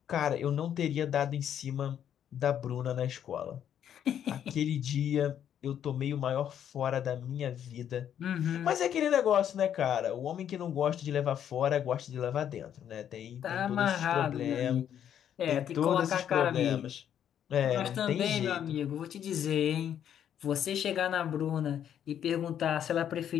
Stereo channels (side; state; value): right; quieter; 9.6 dB